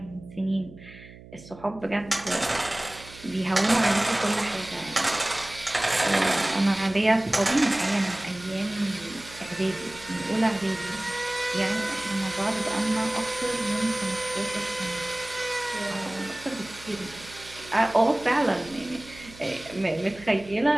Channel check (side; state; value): right; noise; hum, 19 dB below the sound